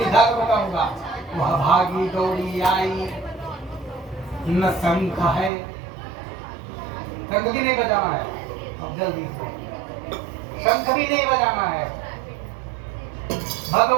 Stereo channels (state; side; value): drops out; left; at 5.5 s